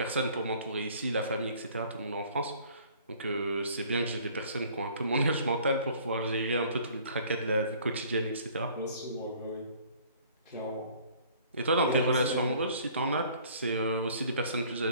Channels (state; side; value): inverted; both; correlation -0.54